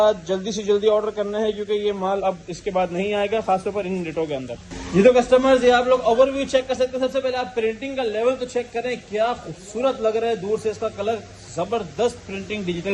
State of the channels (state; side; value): identical; both; correlation 1.00